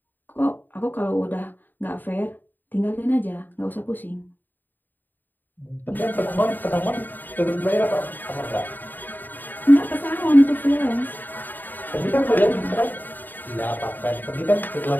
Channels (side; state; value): right; late; 0.090 ms